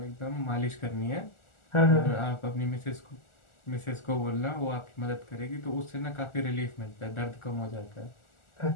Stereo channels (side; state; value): right; late; 1.4 ms